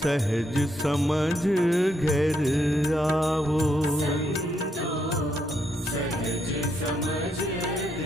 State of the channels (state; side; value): normal; both; correlation 0.77